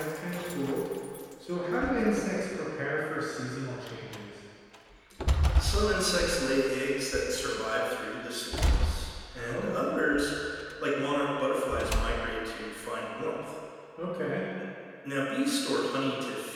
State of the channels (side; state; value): both; identical; correlation 1.00